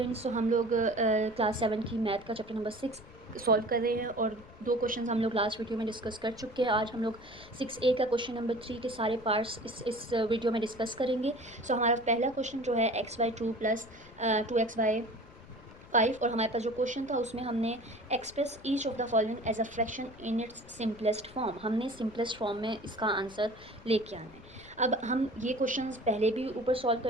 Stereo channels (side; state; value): left; noise; rumble, 21 dB below the sound